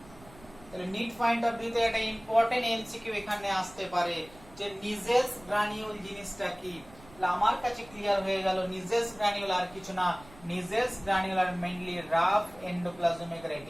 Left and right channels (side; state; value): right; noise; rumble, 22 dB below the sound